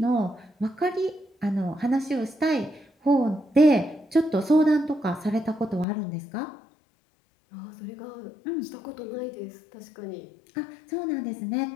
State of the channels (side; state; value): right; drops out; at 5.9 s